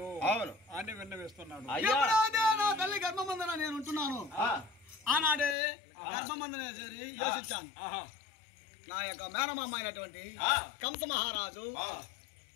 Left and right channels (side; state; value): right; drops out; at 5.6 s